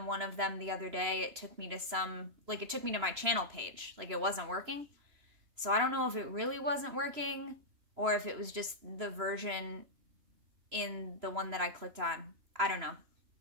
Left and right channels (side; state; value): left; late; 3.0 ms